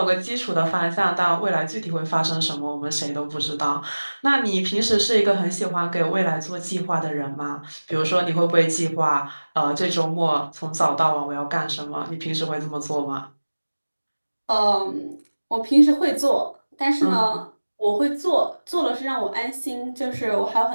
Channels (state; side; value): inverted; both; correlation -1.00